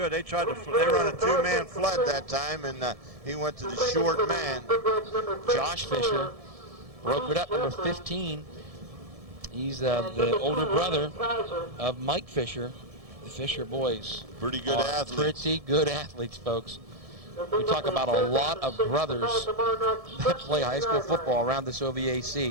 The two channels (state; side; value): late; left; 1.7 ms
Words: They run a 2-man flood that time, and he went to the short man. Josh Fisher broke it up, number 15. He's the older brother of Mike Fisher. The Fisher boys. Pretty good athletes. Pretty good athletes, folks. We talk about a lot of brothers that play high school football around this